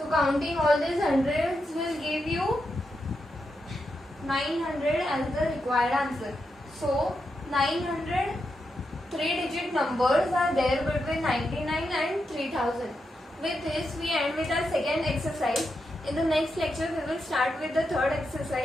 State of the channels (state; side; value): normal; both; correlation 0.85